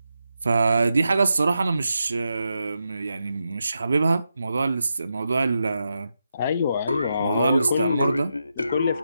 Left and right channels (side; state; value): both; inverted; correlation -0.86